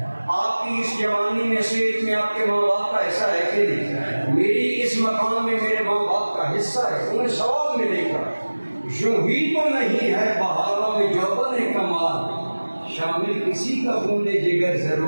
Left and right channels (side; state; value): both; inverted; correlation -1.00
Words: آپ کی اس جوانی میں صحت میں آپ کے ماں باپ کا حصہ ہے کہ نہیں؟ میری اس مقام میں میرے ماں باپ کا حصہ ہے، انہیں ثواب ملے گا۔ یوں ہی تو نہیں ہے بہاروں میں جوبن کمال، شامل کسی کا خون جگر